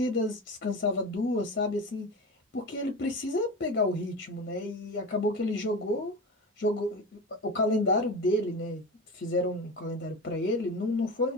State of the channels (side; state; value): both; normal; correlation 0.28